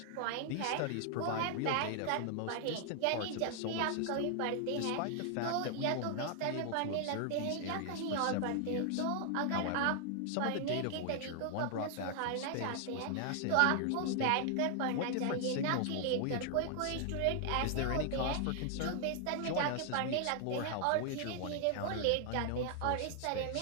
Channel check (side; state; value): both; different; correlation 0.00